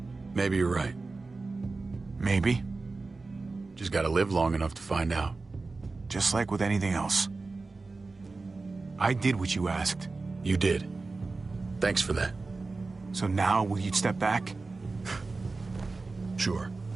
Maybe you're right. Maybe. Just gotta live long enough to find out. Just like with anything else. I did what you asked. You did. Thanks for that. So now, will you step back? Sure.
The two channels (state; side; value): quieter; left; 3.7 dB